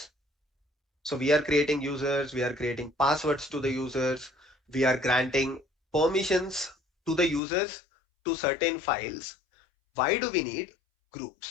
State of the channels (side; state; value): right; drops out; at 7.4 s